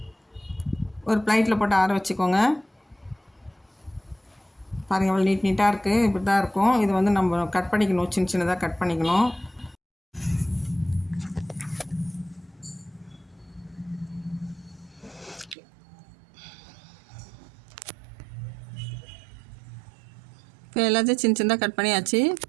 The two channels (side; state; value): left; drops out; at 15.6 s